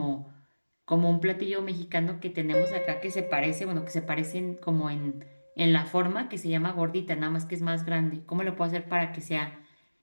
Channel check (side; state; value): both; inverted; correlation -1.00